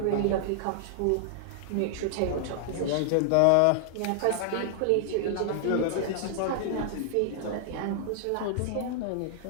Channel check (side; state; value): both; different; correlation -0.01